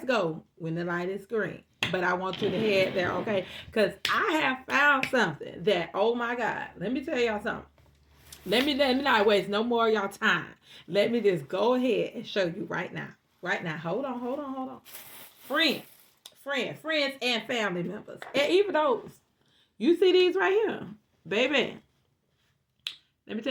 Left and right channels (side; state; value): both; identical; correlation 1.00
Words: go when the light is green. But I want you to head there, okay? Because I have found something that, oh my God, let me tell y'all something. Let me not waste no more of y'all time. Let me just go ahead and show you right now. Right now. Hold on. Friends, and family members. And even those. You see these right here. Baby. Let me